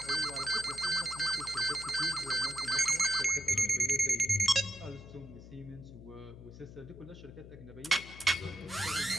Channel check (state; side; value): noise; left; hum, 16 dB below the sound